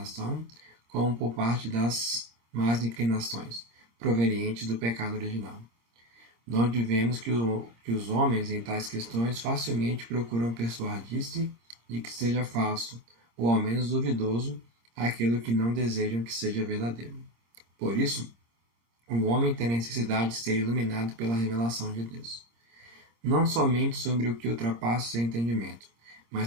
como por parte das más inclinações, provenientes do pecado original. Donde vemos que os homens, em tais questões, facilmente procuram persuadir-se de que seja falso, ou ao menos duvidoso, aquilo que não desejam que seja verdadeiro. Por isso, o homem tem necessidade de ser iluminado pela revelação de Deus. Não somente sobre o que ultrapassa seu entendimento, mas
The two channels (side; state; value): left; late; 26 ms